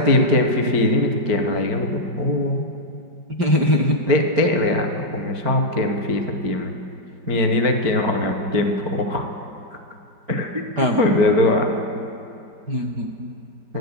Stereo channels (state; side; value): late; left; 5.0 ms